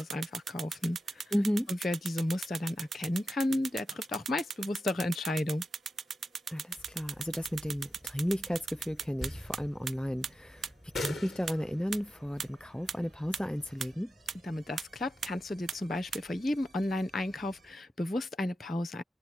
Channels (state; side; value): normal; both; correlation 0.91